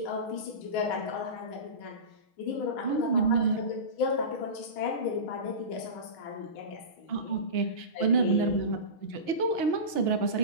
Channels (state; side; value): late; right; 6.3 ms